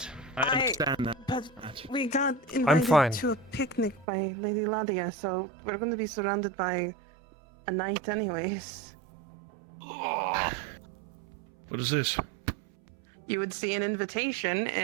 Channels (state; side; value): drops out; left; at 4.0 s